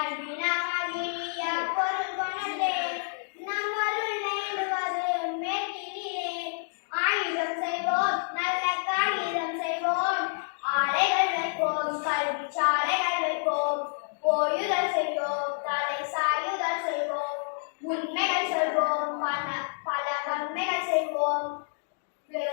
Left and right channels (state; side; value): silent; right; digital silence